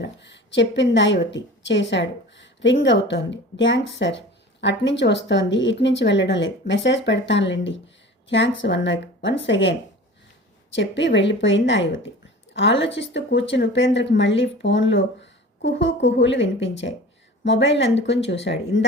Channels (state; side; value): normal; both; correlation 0.39